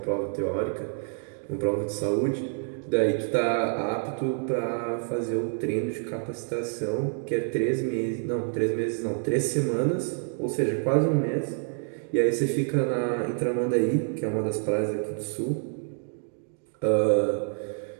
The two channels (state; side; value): silent; left; 57 dB below the other